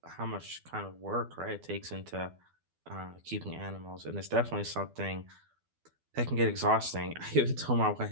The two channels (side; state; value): left; late; 12 ms